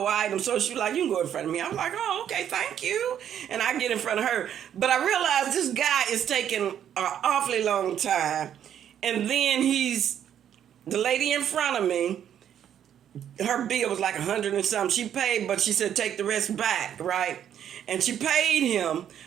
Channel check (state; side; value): quieter; left; 9.7 dB